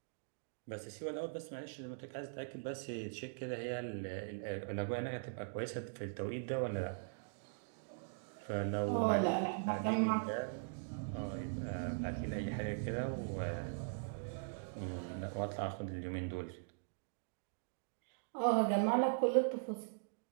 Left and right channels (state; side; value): silent; left; digital silence